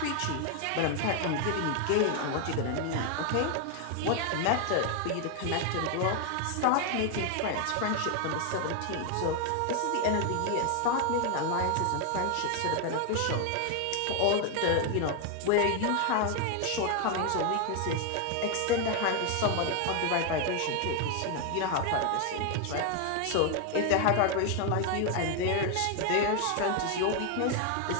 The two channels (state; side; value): different; both; correlation 0.00